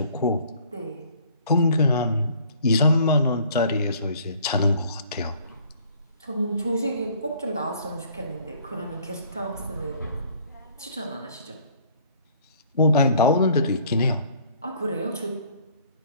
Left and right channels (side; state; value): both; inverted; correlation -0.56